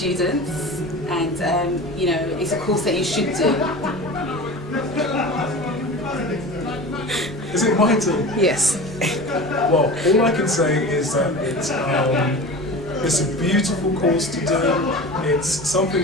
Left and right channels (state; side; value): normal; both; correlation 0.34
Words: and you know, it's a course that you should do. Is it my turn? Yes. Well, all I can say is that it's a beautiful course to do. It's